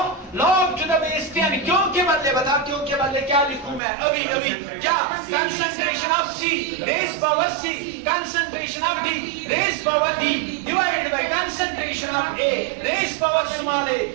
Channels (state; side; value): drops out; left; at 3.8 s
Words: log to the base 10, क्यों के बदले बताओ, क्यों के बदले क्या लिखूं मैं अभी अभी, क्या concentration of C raise power C, concentration of D raise power D divided by concentration of A raise power small a